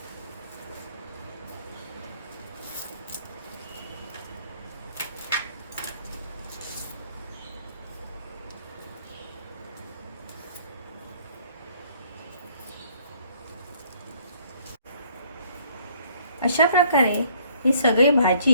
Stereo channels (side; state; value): both; inverted; correlation -0.61